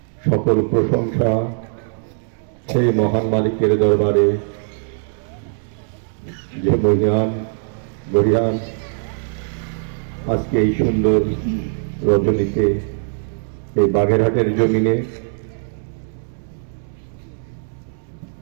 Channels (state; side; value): silent; left; digital silence